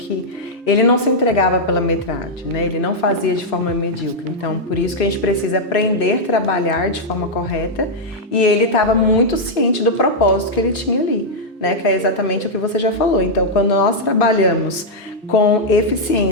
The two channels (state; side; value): normal; both; correlation -0.04